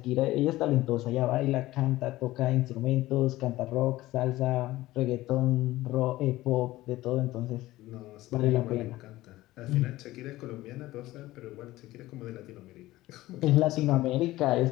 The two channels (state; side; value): quieter; right; 17.1 dB